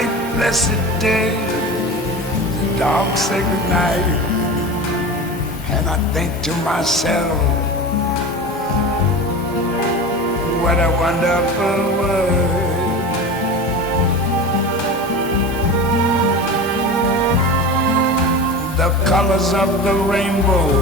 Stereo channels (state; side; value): normal; both; correlation 0.30